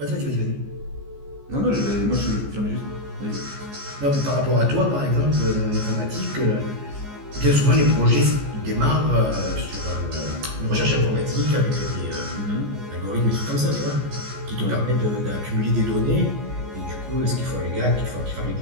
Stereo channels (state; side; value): late; left; 14 ms